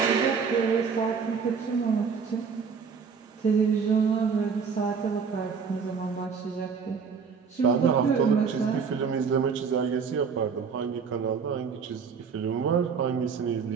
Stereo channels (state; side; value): quieter; left; 5.9 dB